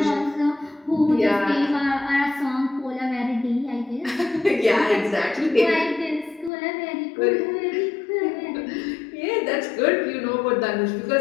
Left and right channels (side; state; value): right; drops out; at 6.5 s